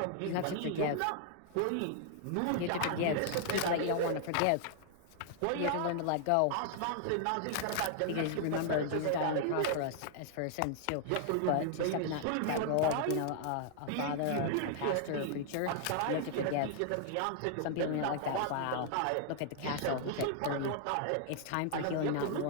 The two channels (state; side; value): different; both; correlation 0.00